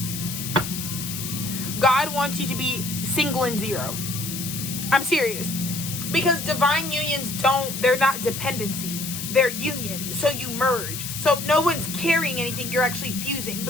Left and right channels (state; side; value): noise; left; hiss, 6 dB below the sound